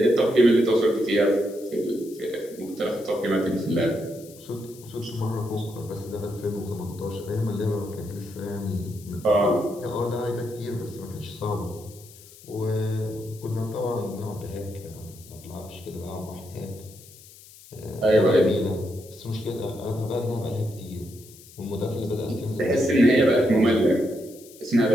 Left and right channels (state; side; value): noise; left; hiss, 21 dB below the sound